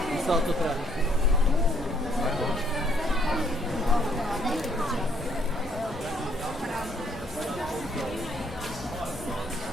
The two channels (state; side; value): normal; both; correlation 0.66